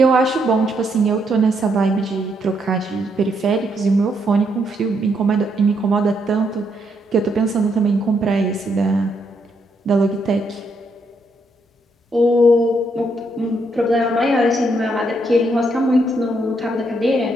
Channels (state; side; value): normal; both; correlation 0.76